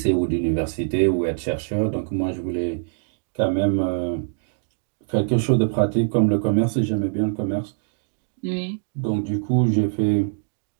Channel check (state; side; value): silent; left; digital silence